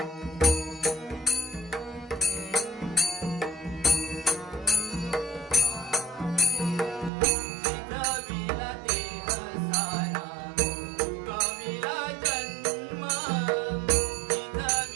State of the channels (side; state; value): left; drops out; at 7.1 s